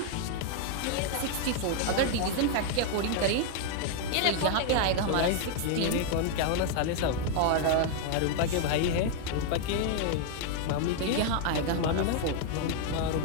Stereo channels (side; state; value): both; different; correlation 0.01